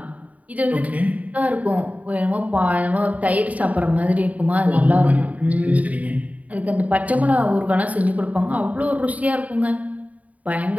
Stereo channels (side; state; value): left; late; 0.071 ms